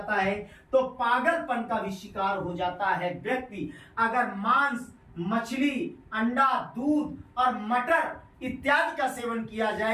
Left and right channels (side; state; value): both; identical; correlation 1.00